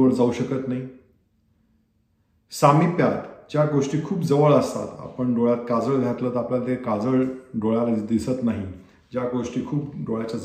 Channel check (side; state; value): both; identical; correlation 1.00